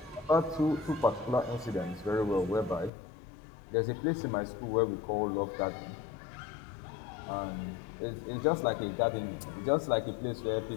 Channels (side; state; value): right; drops out; at 2.9 s